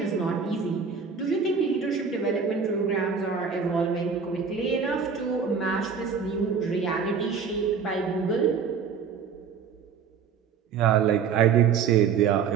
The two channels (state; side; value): quieter; left; 6.3 dB